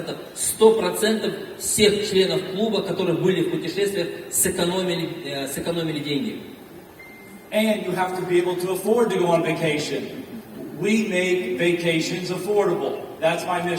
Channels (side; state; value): both; identical; correlation 1.00